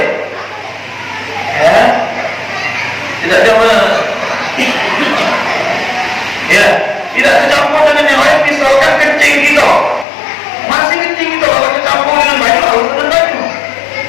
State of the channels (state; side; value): drops out; right; at 10.1 s